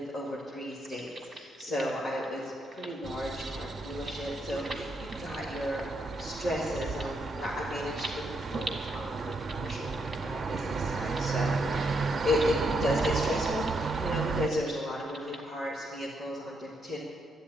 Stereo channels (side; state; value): both; normal; correlation 0.78